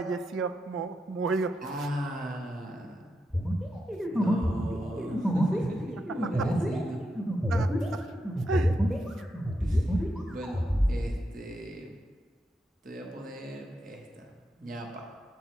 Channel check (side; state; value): both; normal; correlation 0.85